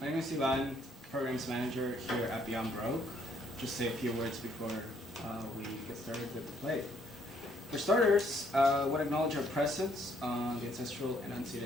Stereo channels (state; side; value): normal; both; correlation 0.68